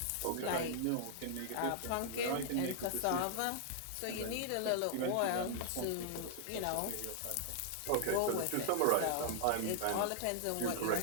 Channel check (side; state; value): both; different; correlation -0.01